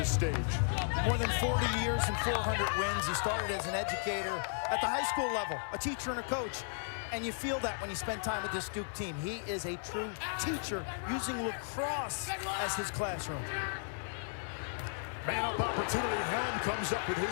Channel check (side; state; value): right; silent; digital silence